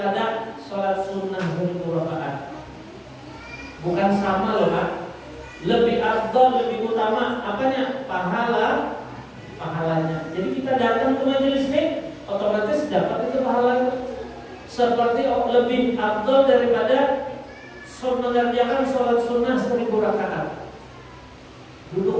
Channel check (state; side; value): identical; both; correlation 1.00